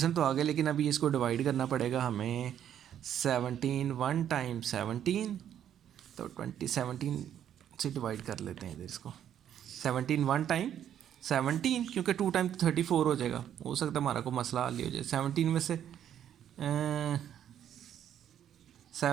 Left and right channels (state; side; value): quieter; left; 10.0 dB